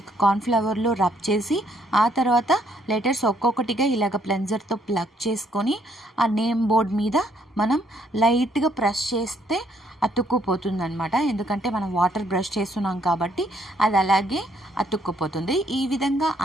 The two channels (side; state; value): both; normal; correlation 0.69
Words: కార్న్ఫ్లవర్లో రబ్ చేసి ఆ తర్వాత లెటర్స్ ఒక్కొక్కటిగా ఇలాగ క్లెన్జర్తో ప్లగ్ చేసుకొని ఆ నేమ్ బోర్డ్ మీద మనం లైట్గా ప్రెస్ చేస్తే అతుక్కుపోతుంది అనమాట. ఎందుకంటే మనం వాటర్ బ్రష్ చేస్తున్నాం కాబట్టి అది అలాగే అతుక్కుపోతుంది. ఈ విధంగా